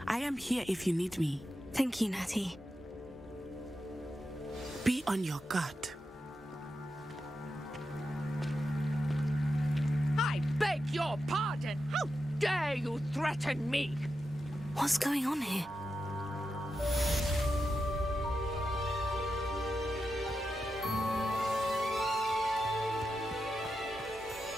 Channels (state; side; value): normal; both; correlation 0.89